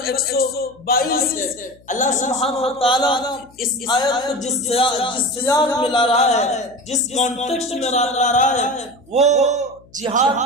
122 ہے۔ اللہ سبحانہ و تعالیٰ اس آیت کو جس سیاق میں لا رہا ہے، جس کانٹیکسٹ میں لا رہا ہے، وہ جہاد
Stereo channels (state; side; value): noise; left; hum, 28 dB below the sound